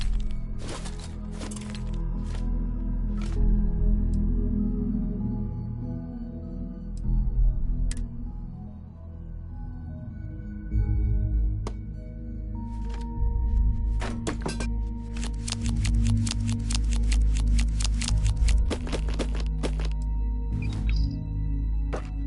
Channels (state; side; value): identical; both; correlation 1.00